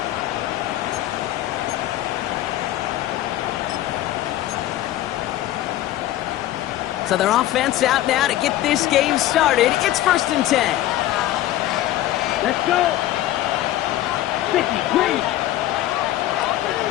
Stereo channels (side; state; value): right; quieter; 14.2 dB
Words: So their offense out now to get this game started. It's 1st and 10. Let's go. 50, green.